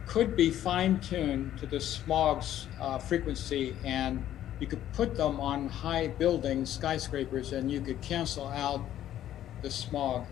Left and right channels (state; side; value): quieter; right; 12.0 dB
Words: could be fine-tuned to the smog's frequency, and you could put them on high buildings, skyscrapers, and you could cancel out the smog.